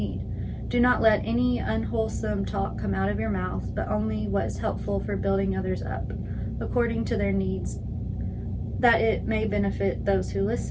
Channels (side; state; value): both; identical; correlation 1.00